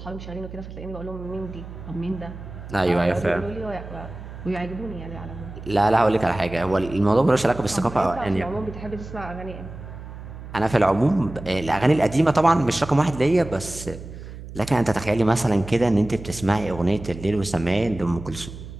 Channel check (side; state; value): right; noise; hum, 13 dB below the sound